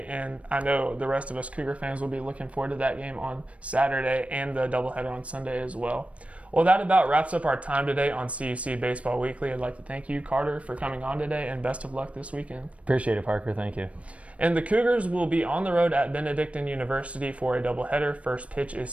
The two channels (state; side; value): late; left; 0.064 ms